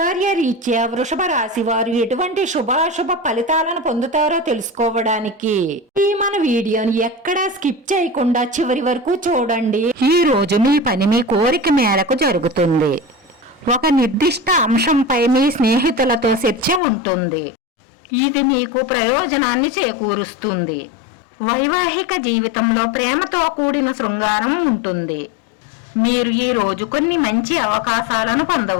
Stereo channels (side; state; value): right; drops out; at 16.8 s